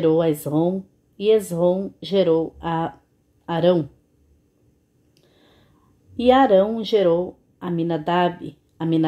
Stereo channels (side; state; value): both; identical; correlation 1.00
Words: a Esrom, e Esrom gerou a Arão. E Arão gerou a Aminadab,